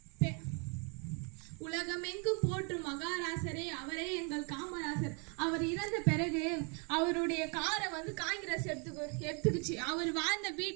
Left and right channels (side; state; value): left; quieter; 35.5 dB